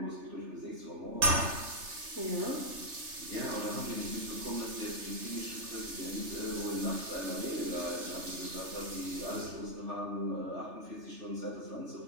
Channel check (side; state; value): left; late; 3.3 ms